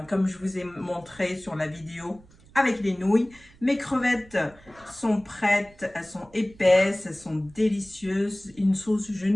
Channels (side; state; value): right; noise; rumble, 26 dB below the sound